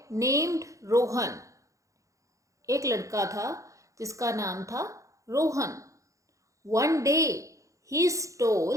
named Rohan. एक लड़का था जिसका नाम था Rohan. One day he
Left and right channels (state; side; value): late; left; 0.15 ms